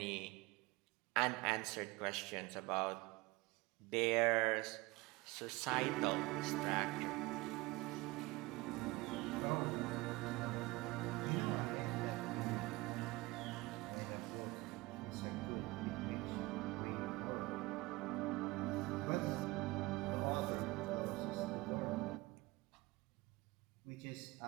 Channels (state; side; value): quieter; left; 22.2 dB